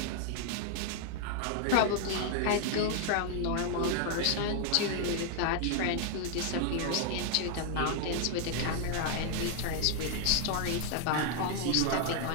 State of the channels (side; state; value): both; different; correlation 0.00